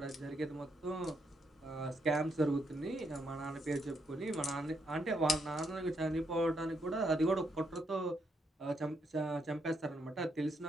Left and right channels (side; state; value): both; normal; correlation 0.77